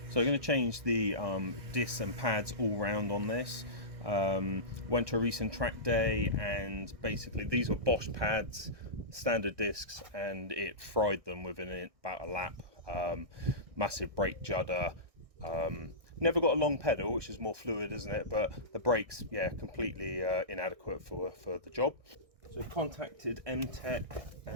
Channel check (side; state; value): left; late; 1.6 ms